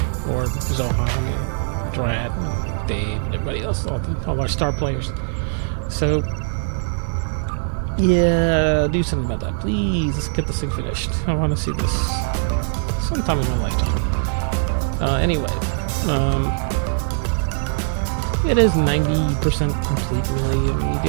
Or Zohan and Drat and Dave and everybody else, all our star players. So, yeah, do something about that, please. Let's get this thing finished. I want to see this sometime in my lifetime. Anyway, it is 90% complete, really. I mean, you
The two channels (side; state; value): left; silent; 65 dB below the other